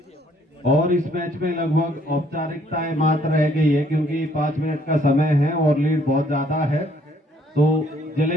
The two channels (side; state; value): both; normal; correlation 0.65